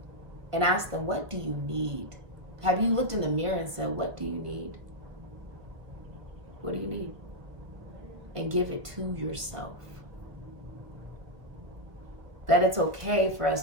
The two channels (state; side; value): late; left; 1.5 ms